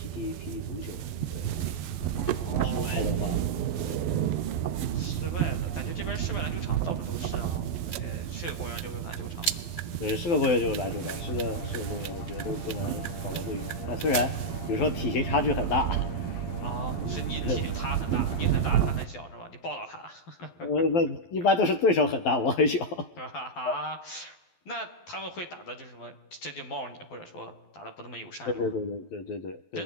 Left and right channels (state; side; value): late; right; 12 ms